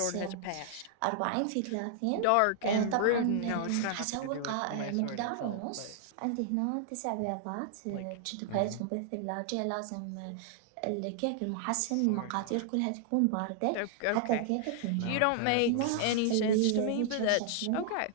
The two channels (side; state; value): both; different; correlation -0.01